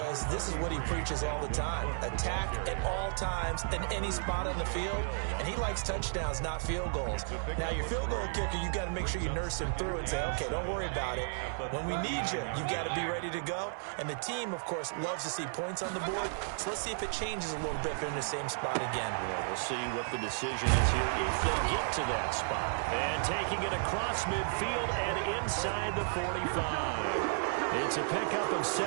this is what he preaches all the time. Attack at all times in any spot on the field, and he likes touchdowns, not field goals. Now, your field goal kicker, you've got to make sure you nurse him through and say, okay, don't worry about it. When we need you, you've got to be ready to go. And the team, of course, loves to see points on the board. So let's see if it changes a little bit if they're in the same spot again. Yeah, we'll see what the decision is here if they get to that spot. And taking it across midfield and inside the 45. It's a pickup of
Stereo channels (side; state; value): left; silent; digital silence